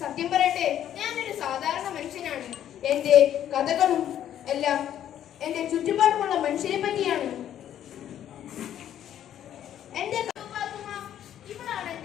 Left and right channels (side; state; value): right; quieter; 10.8 dB